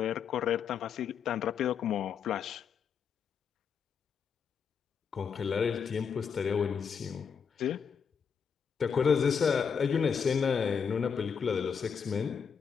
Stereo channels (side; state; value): right; quieter; 6.7 dB